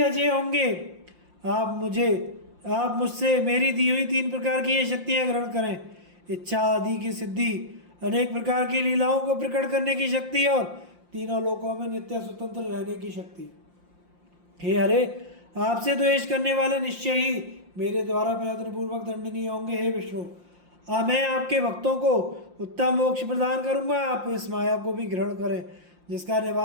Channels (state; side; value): late; left; 5.7 ms